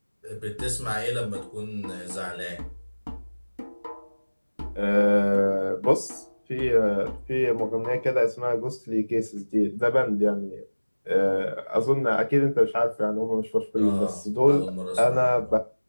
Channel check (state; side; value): inverted; both; correlation -1.00